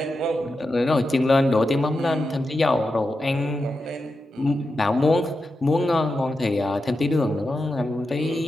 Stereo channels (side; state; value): both; normal; correlation 0.89